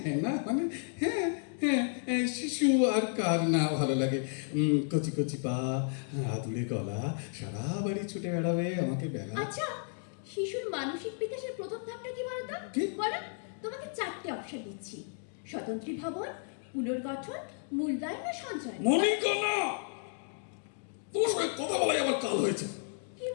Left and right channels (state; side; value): silent; right; 56 dB below the other